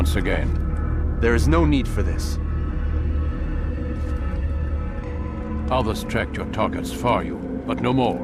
again. There is no need for this. Others tracked your targets for you, but no more.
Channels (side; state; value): both; identical; correlation 1.00